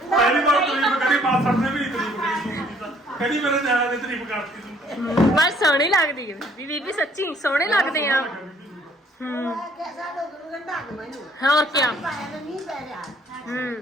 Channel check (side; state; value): both; normal; correlation 0.62